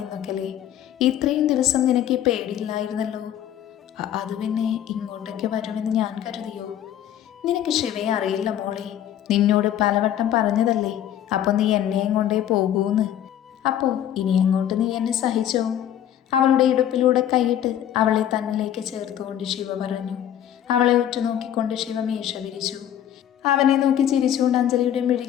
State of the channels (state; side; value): quieter; right; 10.9 dB